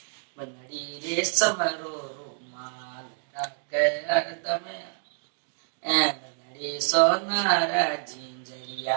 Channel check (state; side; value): silent; left; digital silence